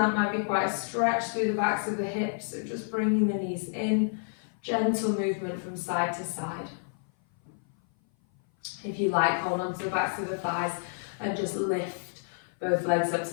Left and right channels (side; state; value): right; silent; 56 dB below the other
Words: might be quite a stretch through the backs of the hips, so just bringing the knees in, gentle movement from side to side. If you like, hold on to the backs of the thighs and just lift both legs up